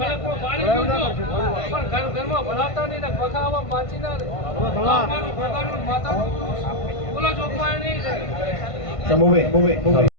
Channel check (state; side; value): late; right; 1.5 ms